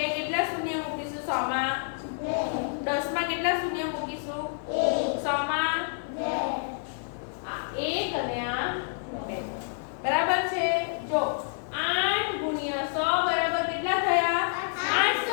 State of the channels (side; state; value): right; silent; 55 dB below the other